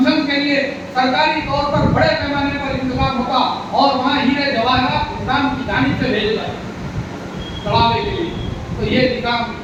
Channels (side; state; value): both; identical; correlation 1.00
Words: کے لیے سرکاری طور پر بڑے پیمانے پر انتظام ہوتا اور وہاں ہیرے جواہرات نظام کی جانب سے بھیجے جاتے چڑھاوے کے لیے۔ تو یہ نظام